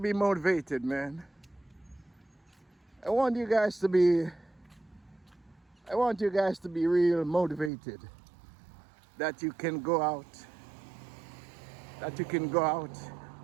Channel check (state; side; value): drops out; left; at 7.7 s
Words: motivated, man. I want you guys to be real motivated. That you can go out.